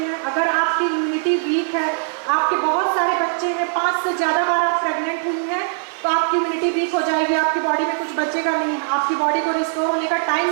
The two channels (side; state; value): left; silent; digital silence